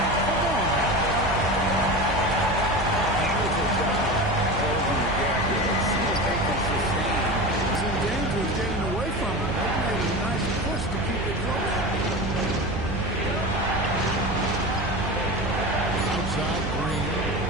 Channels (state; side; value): noise; right; hum, 5 dB below the sound